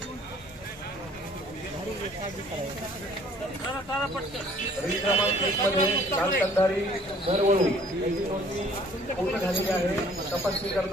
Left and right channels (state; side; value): normal; both; correlation 0.56